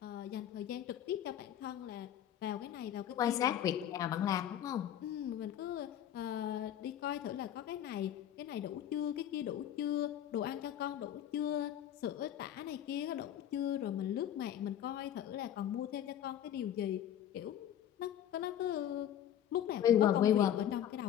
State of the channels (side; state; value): right; quieter; 10.6 dB